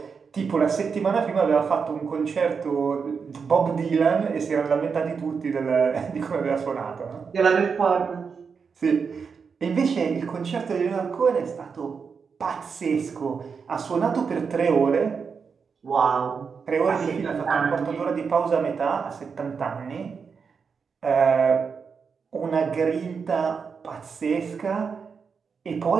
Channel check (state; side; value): quieter; left; 5.8 dB